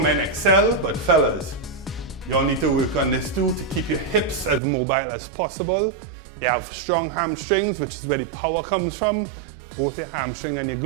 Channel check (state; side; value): drops out; left; at 4.6 s